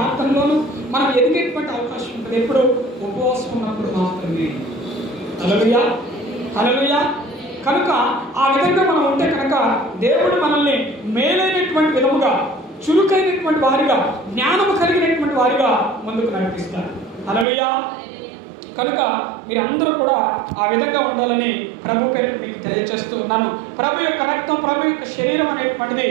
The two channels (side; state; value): left; drops out; at 17.4 s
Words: మనం ఎదిగేటువంటి అవకాశం ఉంటుంది. ఎప్పుడు ఉపవాసం ఉన్నప్పుడు మాత్రమే. హల్లెలూయా, హల్లెలూయా. కనుక ఆ విధంగా మనం ఉంటే కనుక దేవుడు మనల్ని మేలైనటువంటి విధముగా, చురుకైనటువంటి వారిగా, జ్ఞానము కలిగినటువంటి వారిగా ముందుకు నడిపిస్తారు. హల్లెలూయా. కనుక మీరందరూ కూడా ఆ విధంగా ఉండాలని ప్రభు పేరు మీకు తెలియజేస్తూ ఉన్నాను. ప్రభు యొక్క రక్తం, ప్రభు యొక్క శరీరం అనేటువంటిది